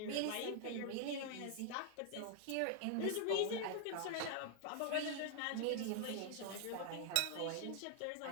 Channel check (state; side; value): different; both; correlation 0.00